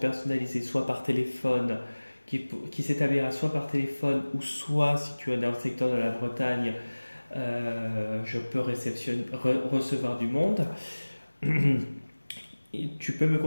soit par téléphone, qui s'établira soit par téléphone ou soit si tu es dans le secteur de la Bretagne, je peux recevoir du monde. Tu peux me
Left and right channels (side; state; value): both; inverted; correlation -1.00